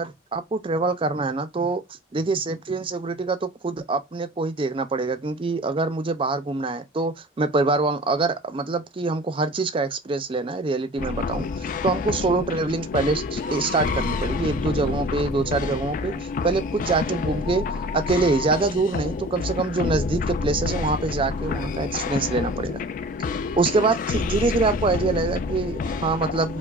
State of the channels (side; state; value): both; normal; correlation 0.43